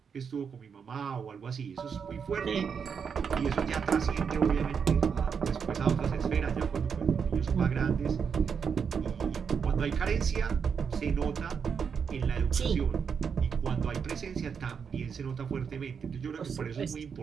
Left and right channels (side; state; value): left; quieter; 6.5 dB